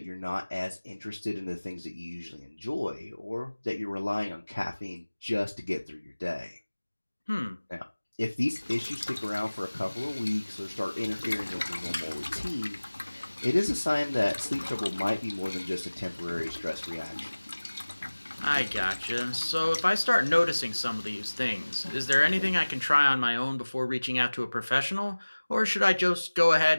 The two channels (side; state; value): both; inverted; correlation -1.00